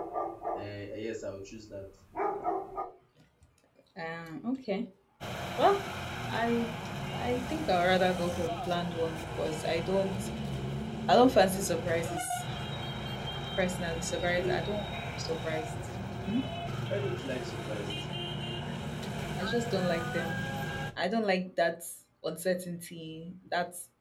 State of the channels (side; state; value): both; identical; correlation 1.00